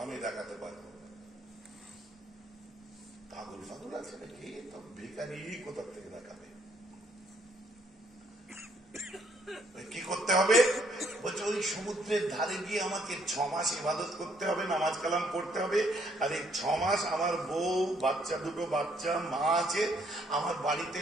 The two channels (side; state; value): both; normal; correlation 0.68